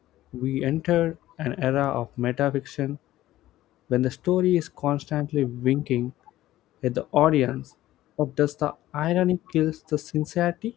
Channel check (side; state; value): right; quieter; 14.9 dB